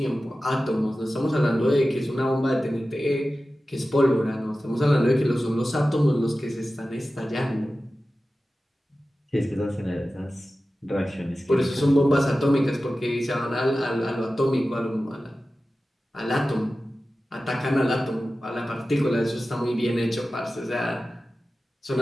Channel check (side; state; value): both; normal; correlation 0.95